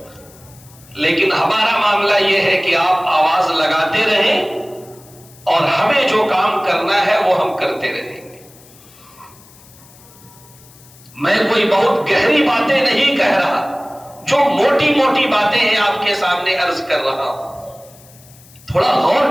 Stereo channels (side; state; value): left; noise; hiss, 25 dB below the sound